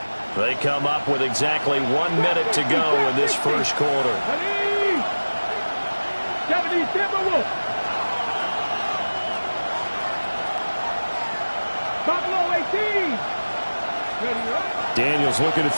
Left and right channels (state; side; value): inverted; both; correlation -1.00